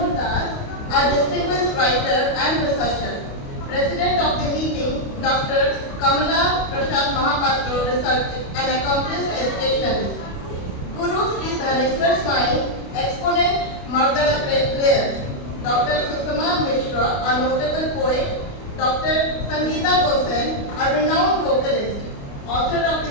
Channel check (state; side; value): late; right; 29 ms